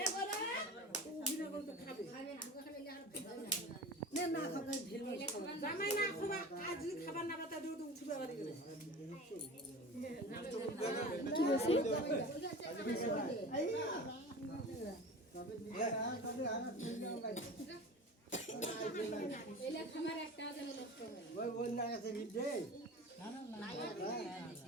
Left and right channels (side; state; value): both; normal; correlation 0.34